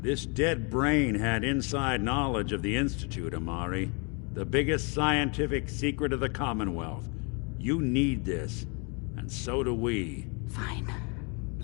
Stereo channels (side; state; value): right; quieter; 33.9 dB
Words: this dead brain had inside knowledge of the Institute, Omari. The biggest scientific secret of the Commonwealth. You need this, and so do we. Fine.